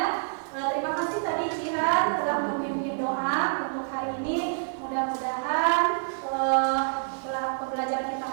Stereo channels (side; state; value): left; silent; digital silence